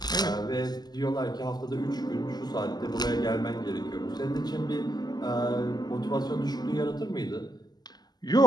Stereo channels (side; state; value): right; late; 0.20 ms